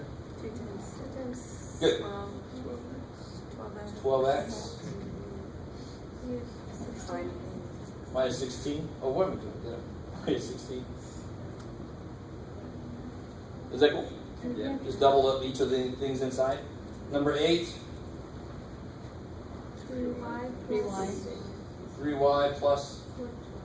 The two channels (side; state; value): both; identical; correlation 1.00